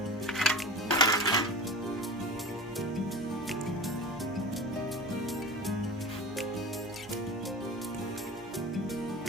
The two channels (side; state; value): both; normal; correlation 0.32